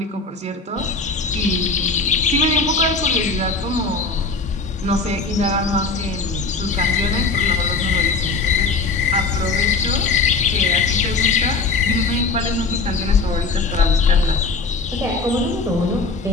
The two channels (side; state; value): right; quieter; 4.1 dB